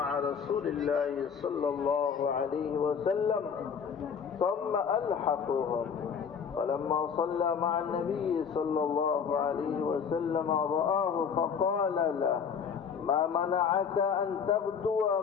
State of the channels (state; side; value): quieter; right; 6.8 dB